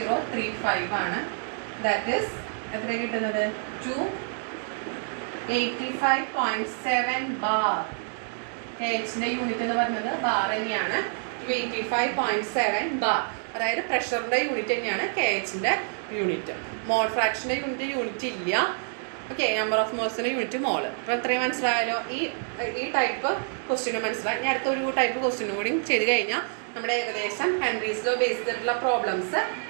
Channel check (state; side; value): silent; left; 60 dB below the other